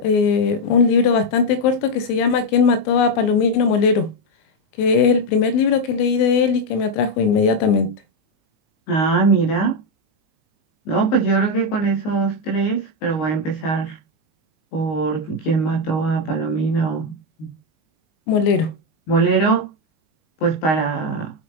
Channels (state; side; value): late; right; 19 ms